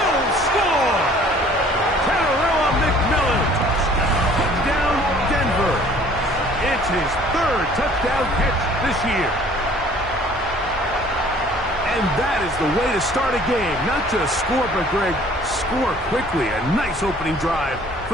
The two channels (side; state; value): both; normal; correlation 0.54